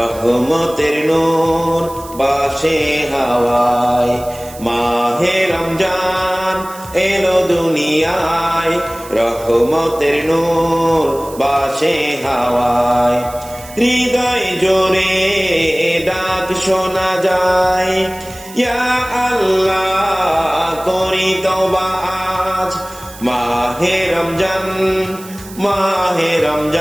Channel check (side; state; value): right; noise; hiss, 18 dB below the sound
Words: নূর বাসে হাওয়ায়। মাহে রমজান এলো দুনিয়ায়, রহমতের নূর বাসে হাওয়ায়। হৃদয় জোরে ডাক শোনা যায়, ইয়া আল্লাহ করি তওবা আজ। মাহে রমজান, মাহে